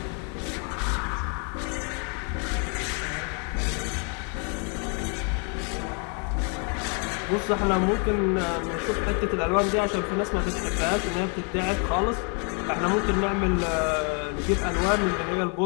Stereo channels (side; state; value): right; quieter; 38.3 dB